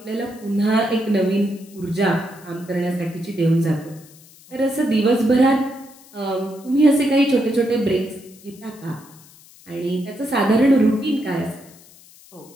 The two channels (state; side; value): noise; left; hiss, 24 dB below the sound